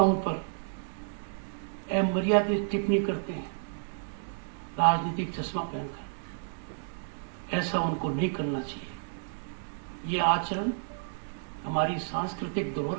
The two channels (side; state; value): left; silent; digital silence